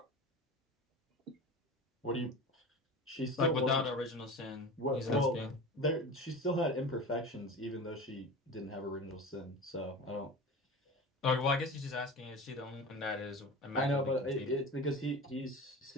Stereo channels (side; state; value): both; normal; correlation 0.32